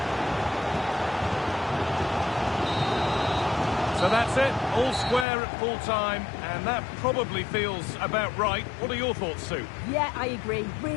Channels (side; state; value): right; drops out; at 5.2 s